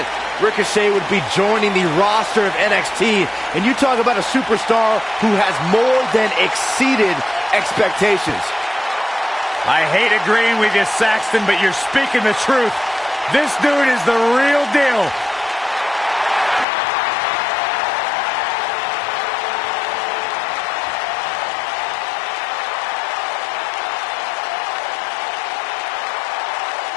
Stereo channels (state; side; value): drops out; right; at 16.7 s